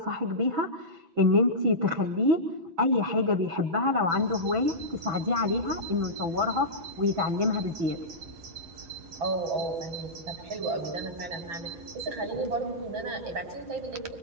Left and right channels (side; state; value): left; late; 6.1 ms